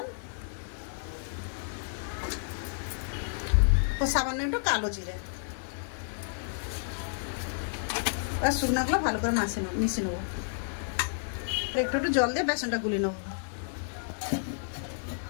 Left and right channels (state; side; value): silent; right; 57 dB below the other